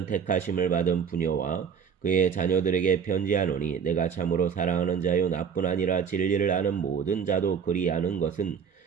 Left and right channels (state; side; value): quieter; left; 7.0 dB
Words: 택하심을 받은 부녀와 그의 자녀들에게 편지하노니 내가 참으로 사랑하는 자요 나뿐 아니라 진리를 아는 모든 자도 그리하는 것은